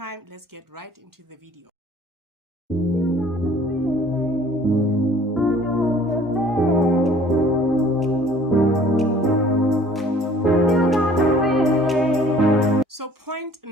let's get right into the video. So point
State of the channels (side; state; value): both; normal; correlation 0.53